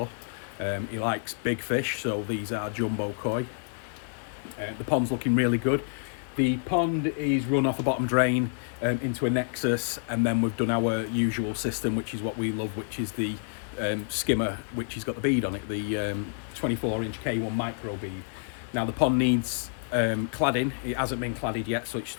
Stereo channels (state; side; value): silent; right; digital silence